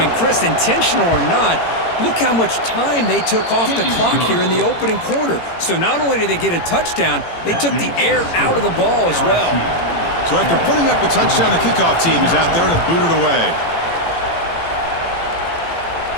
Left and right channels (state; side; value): late; right; 18 ms